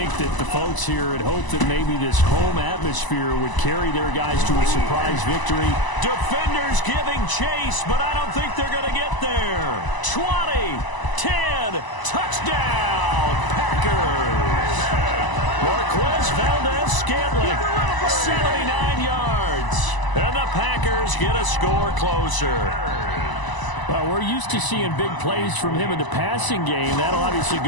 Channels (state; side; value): late; right; 1.0 ms